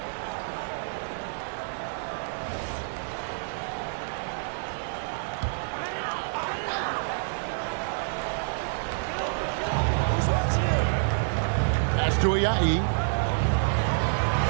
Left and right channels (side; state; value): left; silent; 59 dB below the other